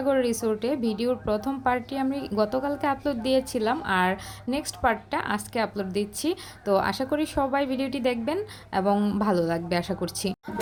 রিসোর্টে। ভিডিওর প্রথম পার্টটি আমি গতকালকে আপলোড দিয়েছিলাম আর নেক্সট পার্টটা আজকে আপলোড দিচ্ছি। তো আশা করি সবাই ভিডিওটি দেখবেন এবং ভালো লাগবে আশা করছি।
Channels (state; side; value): identical; both; correlation 1.00